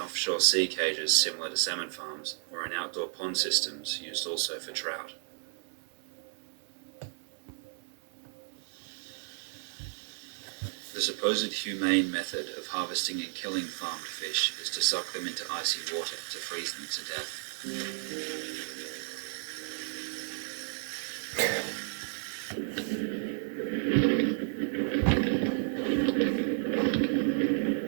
offshore sea cages similar to salmon farms or in outdoor pond systems used also for trout. The supposed humane method of harvesting and killing farmed fish is to suck them into icy water to freeze them to death.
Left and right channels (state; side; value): silent; left; digital silence